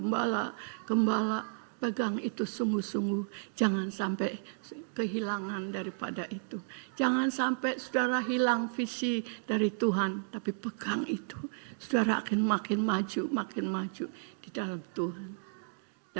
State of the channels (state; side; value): silent; left; digital silence